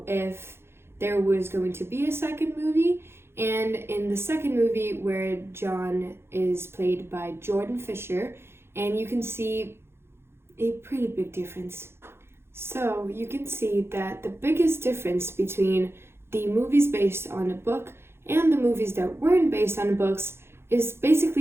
if there was going to be a second movie, and in the second movie where John is played by Jordan Fisher, and you can see a pretty big difference. So you can see that the biggest difference between the movies based on a book and the movies that weren't based on books is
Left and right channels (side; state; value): left; late; 0.12 ms